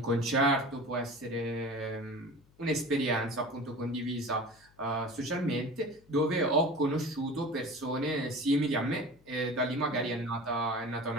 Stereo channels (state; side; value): noise; left; hum, 29 dB below the sound